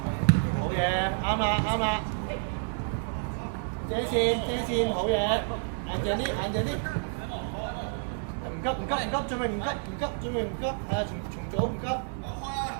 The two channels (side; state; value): left; silent; digital silence